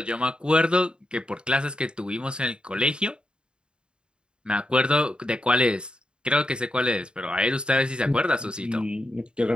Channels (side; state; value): left; late; 0.052 ms